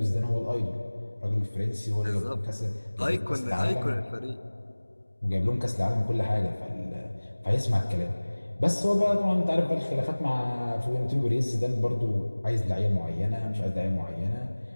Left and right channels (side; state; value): both; inverted; correlation -1.00